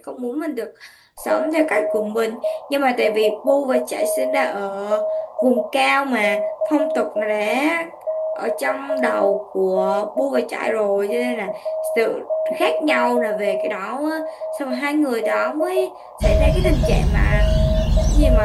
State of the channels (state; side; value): identical; both; correlation 1.00